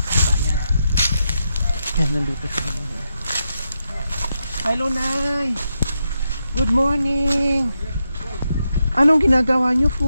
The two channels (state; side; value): inverted; both; correlation -0.84